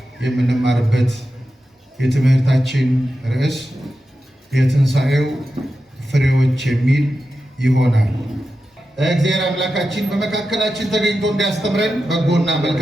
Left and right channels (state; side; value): normal; both; correlation 0.91